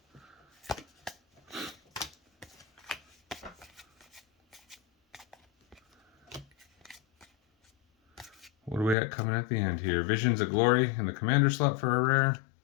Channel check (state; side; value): drops out; right; at 9.0 s